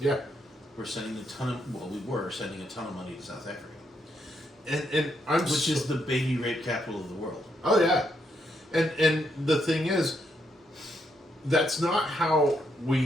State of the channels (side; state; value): both; normal; correlation 0.78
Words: We were sending a ton of money to South Africa, And I'm which is the baby rape capital of the world. oh yeah, and the thing is, that's not how